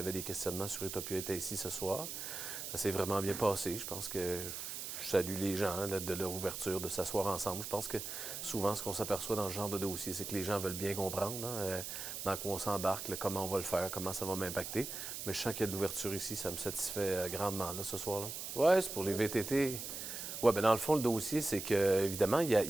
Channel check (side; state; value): right; noise; hiss, 6 dB below the sound